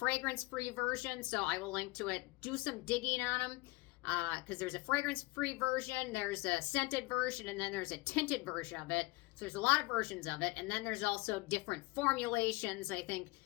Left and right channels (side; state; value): right; quieter; 22.8 dB